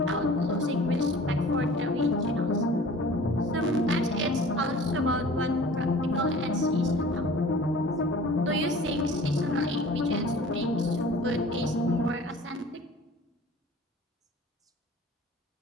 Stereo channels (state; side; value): normal; both; correlation 0.45